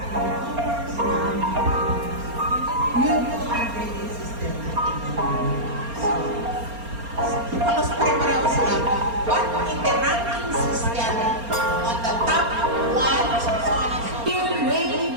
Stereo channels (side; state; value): left; late; 4.3 ms